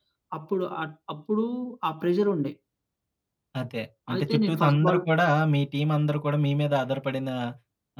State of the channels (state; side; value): identical; both; correlation 1.00